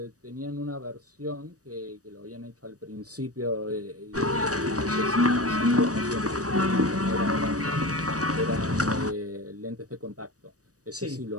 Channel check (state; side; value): late; left; 0.66 ms